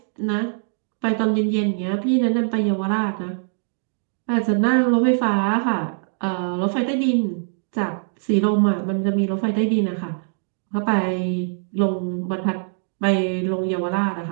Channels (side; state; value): left; silent; 62 dB below the other